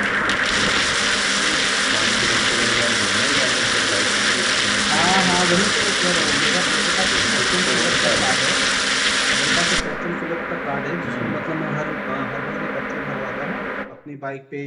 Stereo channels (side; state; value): both; identical; correlation 1.00